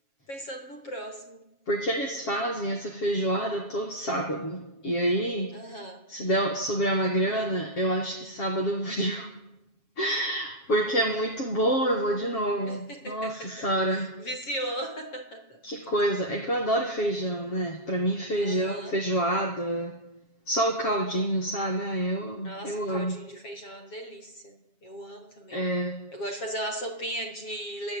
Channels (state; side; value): late; right; 7.3 ms